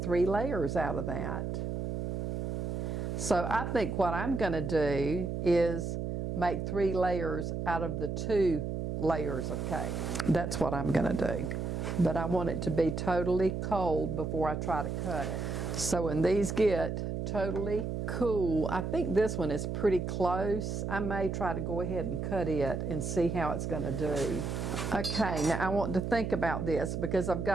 layers out of that. So I think what I'm going to do is make 3 layers out of the 2 layers of cake. That's what I'm going to do. But I want it to be totally cold before I try to cut it. So when these get totally cool, I think this one is pretty close. I may try to go ahead and cut it and see how it's going to do. Okay, now I want to think about this because I've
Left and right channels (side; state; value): right; noise; hum, 3 dB below the sound